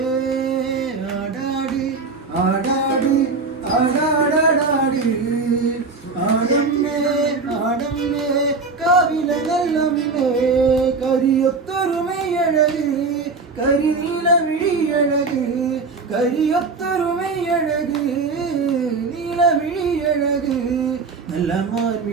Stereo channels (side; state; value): left; quieter; 4.3 dB